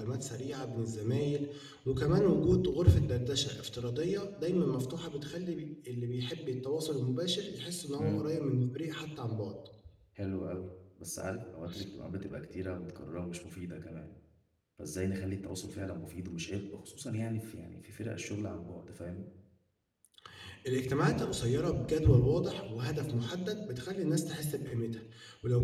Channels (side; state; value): both; identical; correlation 1.00